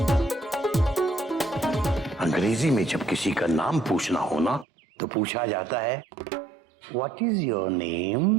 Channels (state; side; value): drops out; left; at 4.7 s